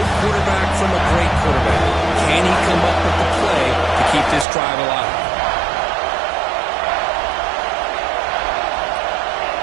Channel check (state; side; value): drops out; left; at 4.5 s